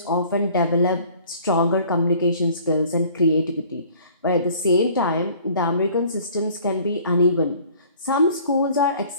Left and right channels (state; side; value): inverted; both; correlation -0.52